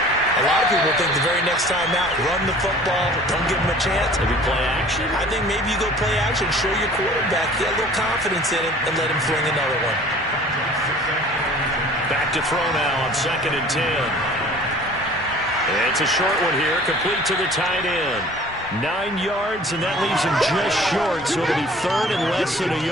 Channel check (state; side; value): normal; both; correlation 0.48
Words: lot of people think the very next time out, run the football, don't give them a chance. Maybe play action? I think maybe you go play action, show your quarterback, get a little confidence in him, and let him fling another one. Back to throw now on 2nd and 10. It's a short one here, complete to the tight end. 9 yards, and that leaves him just short, so it'll be 3rd and less than a